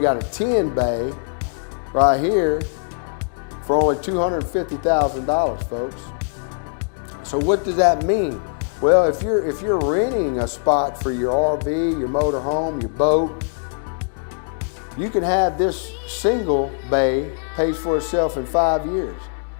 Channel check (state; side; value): silent; right; digital silence